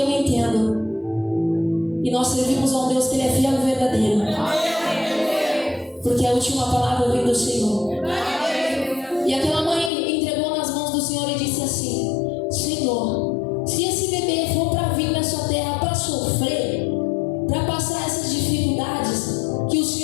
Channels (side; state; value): right; drops out; at 9.9 s